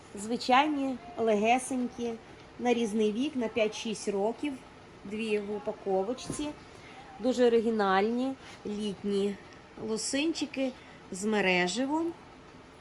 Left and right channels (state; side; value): identical; both; correlation 1.00